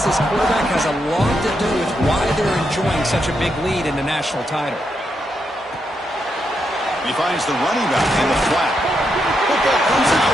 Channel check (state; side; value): normal; both; correlation 0.82